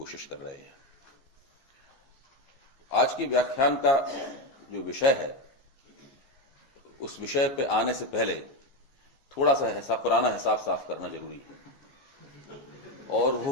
कर रहे हैं। आज के व्याख्यान का जो विषय है, उस विषय पे आने से पहले थोड़ा सा पुराना हिसाब साफ करना जरूरी है। और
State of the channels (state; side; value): late; right; 15 ms